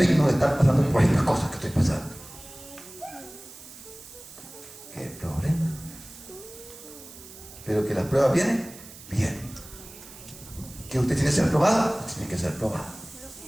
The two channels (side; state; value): right; noise; hiss, 17 dB below the sound